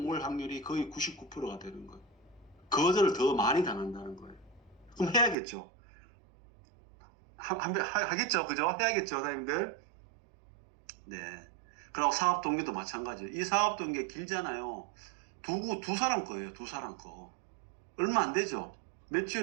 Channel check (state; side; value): drops out; left; at 5.4 s